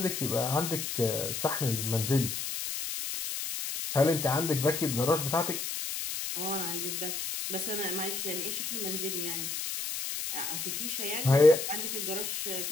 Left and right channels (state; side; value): noise; left; hiss, 3 dB below the sound